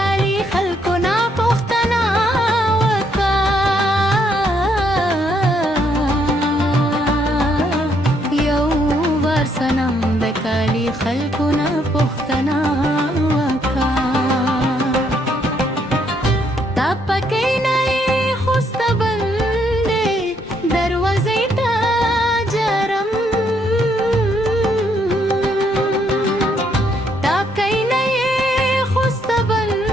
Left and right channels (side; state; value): both; normal; correlation 0.72